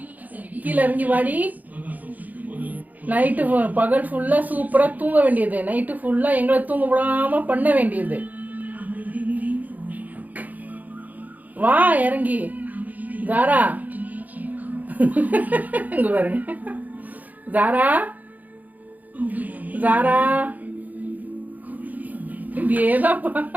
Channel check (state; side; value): late; left; 0.080 ms